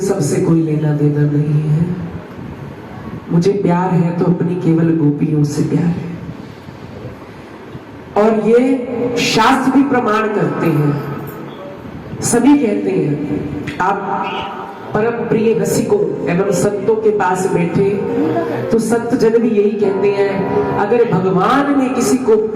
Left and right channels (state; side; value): identical; both; correlation 1.00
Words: सब से कोई लेना देना नहीं है, मुझे प्यार है तो अपनी केवल गोपियों से प्यार है। और ये शास्त्र भी प्रमाण करते हैं, सभी कहते हैं। आप परम प्रिय रसिकों एवं संतों के पास बैठे तो संत जन भी यही कहते हैं, अगर भगवान ने किसी को